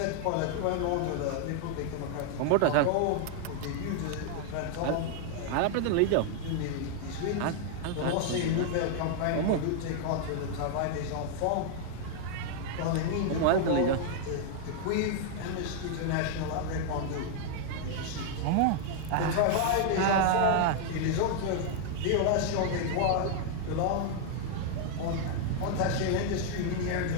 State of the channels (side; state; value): both; different; correlation 0.00